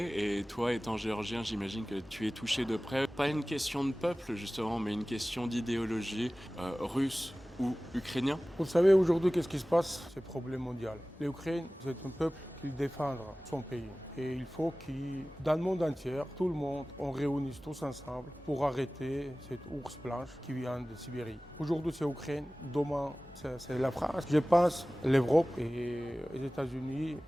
et toi étant géorgien j'imagine que tu es touché de près. Pas une question de peuple justement mais une question d'idéologie russe ou ukrainien. Vous savez aujourd'hui qu'est-ce qui se passe? C'est un problème mondial. L'Ukraine c'est un peuple qui défend son pays. Et il faut que dans le monde entier, tout le monde, on réunisse tous ensemble pour arrêter cette ours blanche qui vient de Sibérie. Aujourd'hui c'est l'Ukraine, demain c'est la France. Je pense l'Europe et les États-Unis,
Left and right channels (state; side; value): normal; both; correlation 0.97